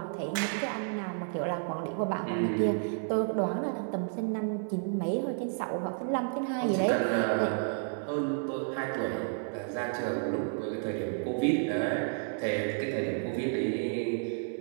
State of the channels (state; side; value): silent; left; digital silence